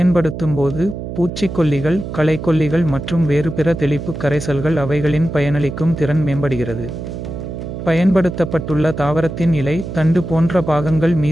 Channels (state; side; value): noise; right; hum, 8 dB below the sound